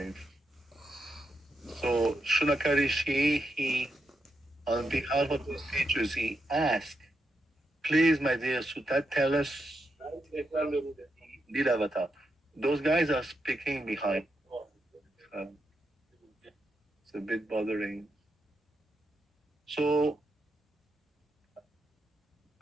So Shunaka Rishi, he, on behalf of the sages, he asked, please, my dear Sutta, tell us the avatar. Those guys are speaking behind. It's a bit bothering. So,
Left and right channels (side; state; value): both; normal; correlation 0.84